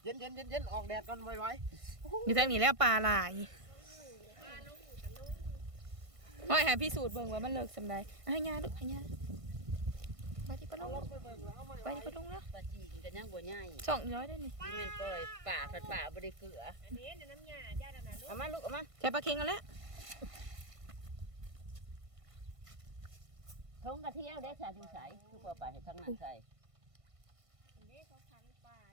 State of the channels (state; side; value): late; left; 1.5 ms